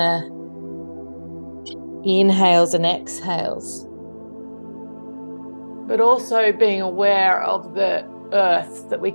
inhales and exhales, but also being aware of the earth, that we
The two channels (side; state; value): both; inverted; correlation -1.00